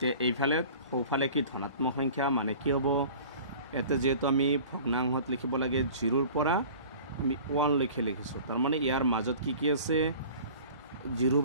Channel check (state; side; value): inverted; both; correlation -0.43